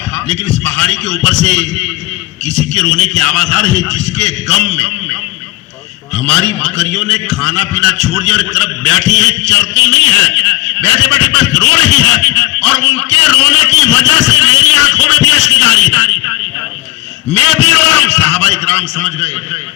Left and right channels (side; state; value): right; quieter; 18.6 dB